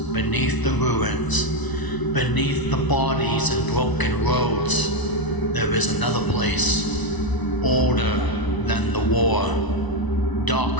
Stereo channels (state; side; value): late; right; 1.0 ms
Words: beneath the ruins, beneath the bodies and broken roads, there is another place, older than the war,